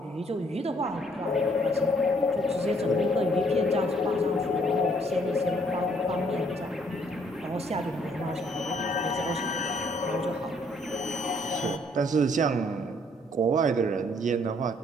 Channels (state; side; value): normal; both; correlation 0.65